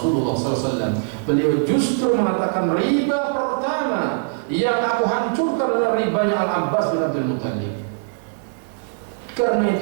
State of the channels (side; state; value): left; silent; digital silence